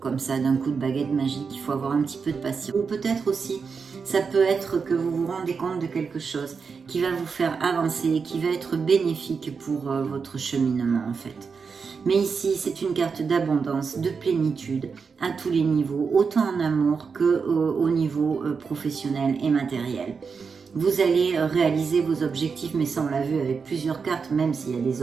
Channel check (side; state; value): left; quieter; 5.5 dB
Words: ça, d'un coup de baguette magique, il faut avoir un petit peu de patience. Ou peut-être aussi, ça peut être que vous vous rendez compte de quelque chose qui va vous faire avancer, qui va être bénéfique pour votre cheminement en fait. Mais ici, c'est une carte d'abondance, de plénitude, à tous les niveaux, autant en amour qu'au niveau professionnel et matériel. Vous allez réaliser vos objectifs, mais ça on l'a vu avec plusieurs cartes, même s'il y a des